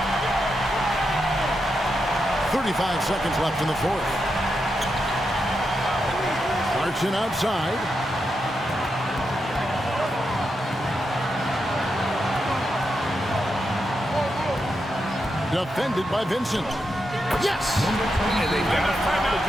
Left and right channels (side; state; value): both; normal; correlation 0.85